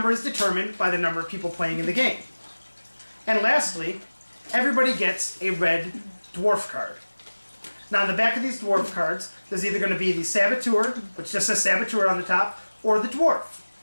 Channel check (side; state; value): both; inverted; correlation -1.00